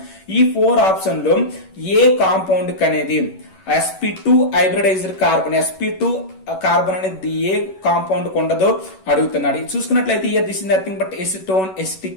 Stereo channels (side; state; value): right; late; 11 ms